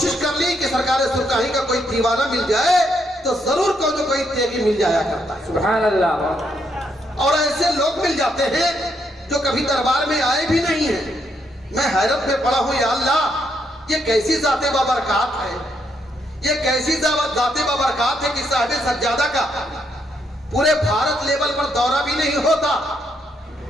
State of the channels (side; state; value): both; normal; correlation 0.76